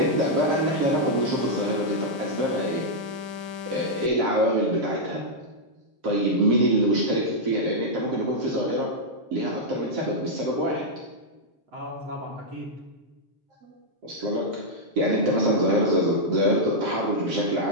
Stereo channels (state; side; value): late; left; 7.6 ms